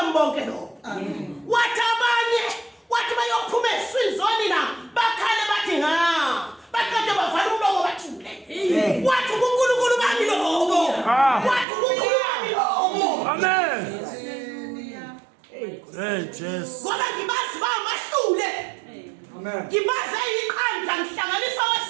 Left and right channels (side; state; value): left; drops out; at 11.7 s